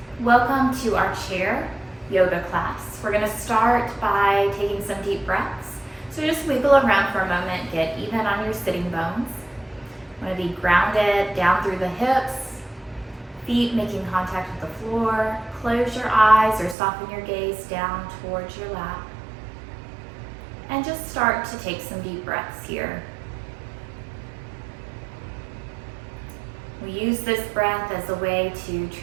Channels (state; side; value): drops out; left; at 16.8 s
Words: Welcome to our chair yoga class. We're going to start by taking some deep breaths. So just wiggle around for a moment, get even on your sitting bones. You want to be grounded down through the hips, feet making contact with the floor. Close your eyes or soften your gaze down towards your lap. And just start to take some deep breaths here. We use this breath as a way to